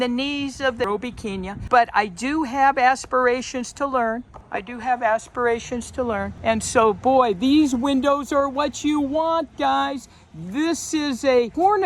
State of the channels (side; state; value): both; identical; correlation 1.00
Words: knees of Nairobi, Kenya. But I do have aspirations to learn. And so, boy, these windows are what you want, guys. This is a